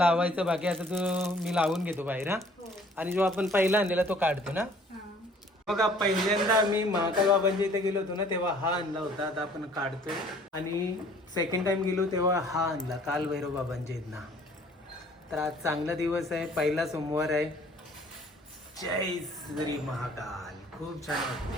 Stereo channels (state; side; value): normal; both; correlation 0.55